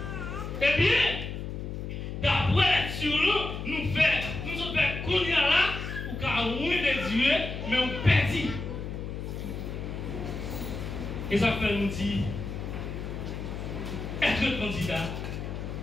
Eh bien, d'après sur nous, nous faisons qu'on y a là, ou qu'à de Dieu, mais on perdit. Et ça fait nous dire, être candidat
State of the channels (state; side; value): noise; left; hum, 6 dB below the sound